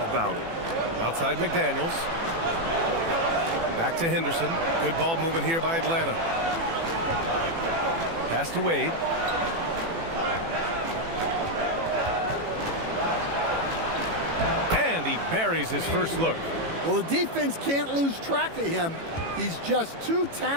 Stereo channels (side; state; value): left; late; 18 ms